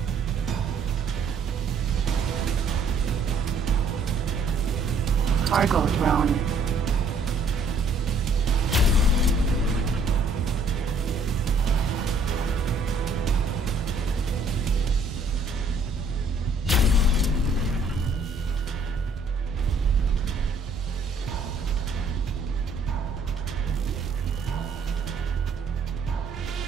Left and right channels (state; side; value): quieter; left; 3.3 dB